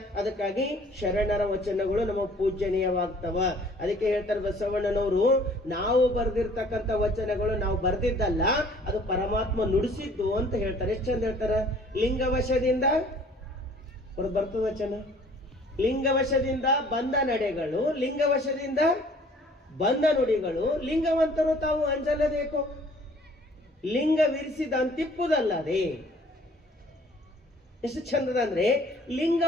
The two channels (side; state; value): both; normal; correlation 0.55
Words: ಅದಕ್ಕಾಗಿ ಶರಣರ ವಚನಗಳು ನಮ್ಮ ಪೂಜನೀಯವಾಗ್ತವ. ಅದಕ್ಕೆ ಹೇಳ್ತಾರೆ ಬಸವಣ್ಣನವರು, ನಾವು ಬರೆದಿರ್ತಕ್ಕಂಥ ವಚನಗಳು ನಾವು ಬರ್ದಿದ್ದಲ್ಲ, ಅದು ಪರಮಾತ್ಮ ನುಡಿಸಿದ್ದು ಅಂತ ಹೇಳ್ತಾರೆ. ಎಷ್ಟು ಚಂದ ಹೇಳ್ತಾರ. ಲಿಂಗವಶದಿಂದ ಬರ್ತದ ವಚನ. ಲಿಂಗವಶದಿಂದ ಬಂದ ನಡೆಗಳು, ಲಿಂಗವಶದಿಂದ ಬಂದ ನುಡಿಗಳು. ಲಿಂಗವಂತರು ತಾವು ಅಂಜಲಬೇಕು, ಲಿಂಗವಿರಿಸಿದ ಅಂತಿಪ್ಪುದಲ್ಲದೆ. ಎಷ್ಟು ಚಂದದ ಅಂದ್ರೆ